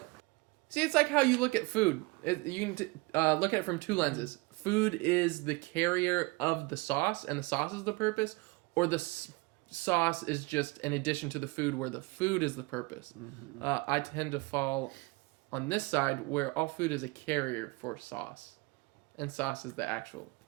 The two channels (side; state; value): left; quieter; 24.7 dB